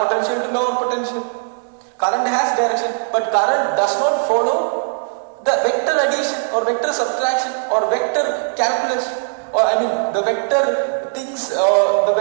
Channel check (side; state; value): left; silent; digital silence